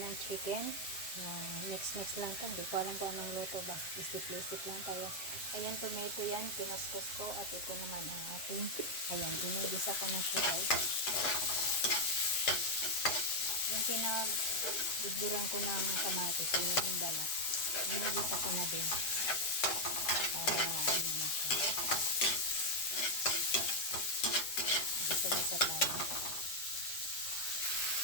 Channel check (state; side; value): late; right; 7.6 ms